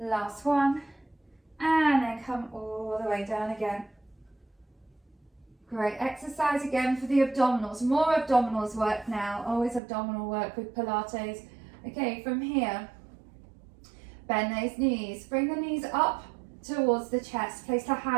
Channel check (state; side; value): drops out; left; at 9.8 s